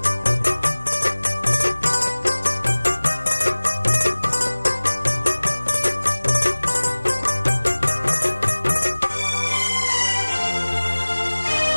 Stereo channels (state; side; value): inverted; both; correlation -1.00